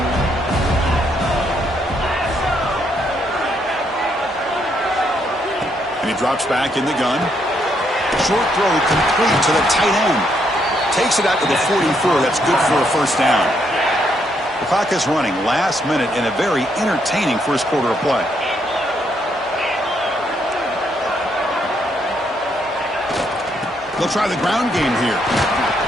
And he drops back in the gun. Short throw complete to the tight end. Takes it out to the 44. That's good for a first down. The clock is running last minute in a very entertaining first quarter of play. They'll try the ground game here.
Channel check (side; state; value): both; normal; correlation 0.74